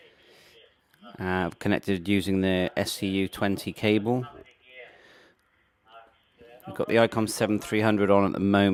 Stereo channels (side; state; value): both; identical; correlation 1.00